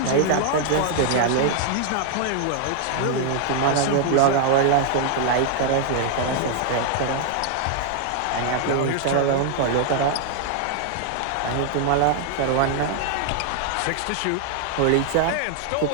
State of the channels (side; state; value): both; different; correlation -0.01